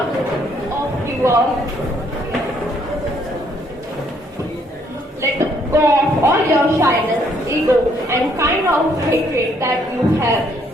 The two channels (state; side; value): normal; both; correlation 0.68